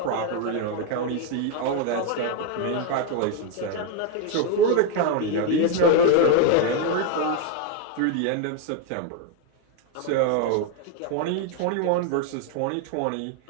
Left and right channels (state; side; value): different; both; correlation 0.01